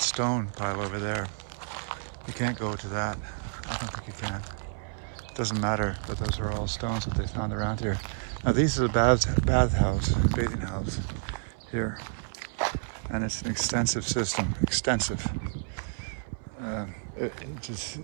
stone pile over there. You can't go to that. I don't think you can. It doesn't matter, but those are all stones that they found around here. Now these are the bathing house here. And it's an extensive system, extensive. It just,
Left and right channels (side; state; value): left; silent; 58 dB below the other